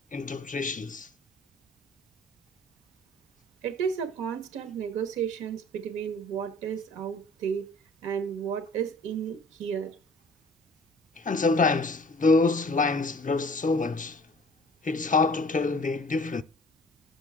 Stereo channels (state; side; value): normal; both; correlation 0.50